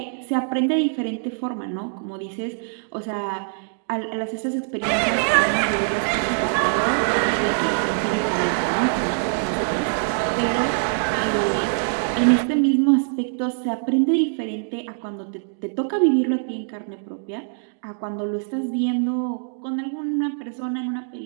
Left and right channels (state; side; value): silent; left; digital silence